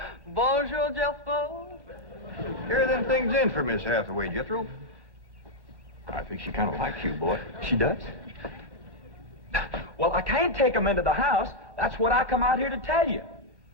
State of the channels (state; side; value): late; left; 1.1 ms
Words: bonjour, Jethro. Carry them things in for Miss Hathaway, Jethro. I think she kind of likes you, boy. She does? Well, I can't take them into the house. That's what I come out here to tell you.